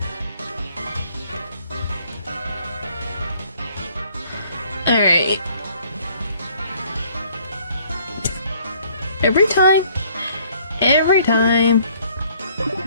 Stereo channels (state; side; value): inverted; both; correlation -0.60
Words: Alright. Every time.